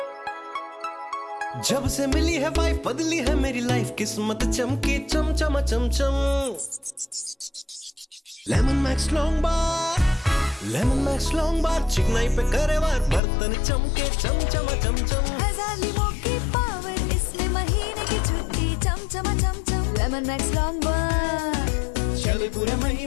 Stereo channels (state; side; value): drops out; right; at 13.2 s